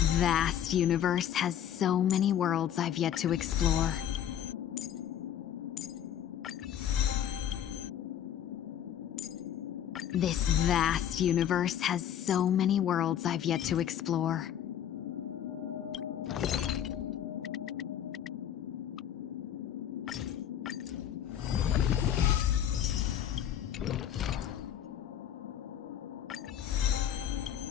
vast universe has so many worlds I've yet to explore. This vast universe has so many worlds I've yet to explore.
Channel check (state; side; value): quieter; right; 9.9 dB